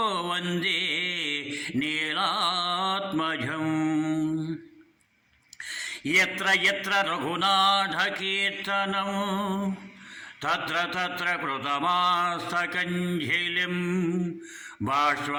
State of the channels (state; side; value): identical; both; correlation 1.00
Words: वन्दे नीलात्मजम्। यत्र यत्र रघुनाथकीर्तनं तत्र तत्र कृतमास्तकञ्जलिं